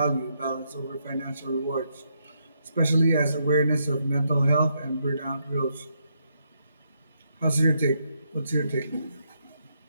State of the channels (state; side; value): inverted; both; correlation -0.78